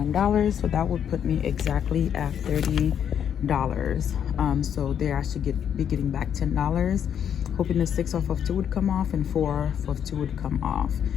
So that would put me exactly at $30. So there I should be getting back $10. Hoping the 6 off of 2 would come off and 4 off of 2 would come off,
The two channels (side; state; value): right; quieter; 8.7 dB